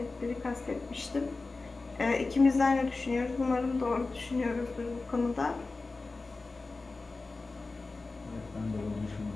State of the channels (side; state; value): right; quieter; 3.7 dB